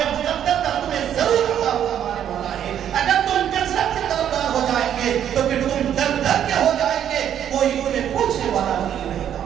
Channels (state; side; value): quieter; left; 9.8 dB